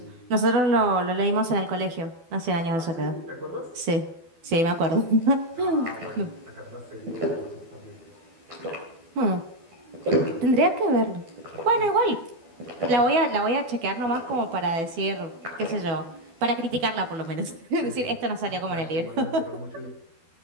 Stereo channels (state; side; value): late; left; 12 ms